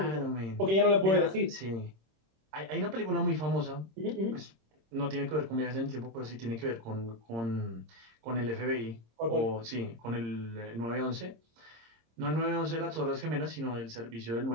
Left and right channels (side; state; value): left; late; 26 ms